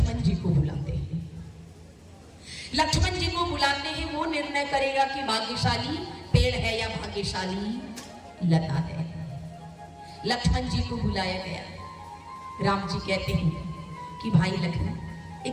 जी को बुलाते हैं। लक्ष्मण जी को बुलाते हैं, वो निर्णय करेगा कि भाग्यशाली पेड़ है या भाग्यशाली लता है। लक्ष्मण जी को बुलाया गया। राम जी कहते हैं कि भाई लक्ष्मण,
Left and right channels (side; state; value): both; identical; correlation 1.00